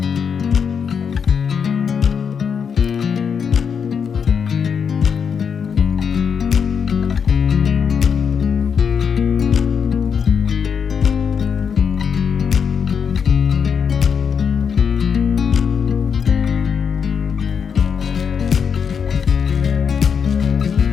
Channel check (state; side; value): quieter; right; 6.7 dB